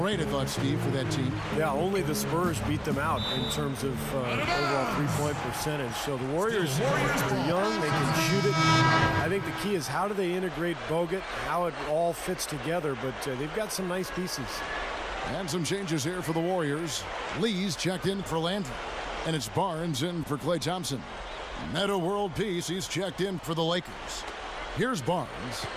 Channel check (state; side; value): identical; both; correlation 1.00